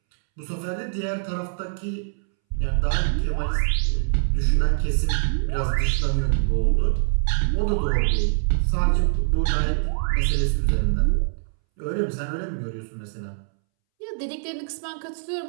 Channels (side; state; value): left; silent; 63 dB below the other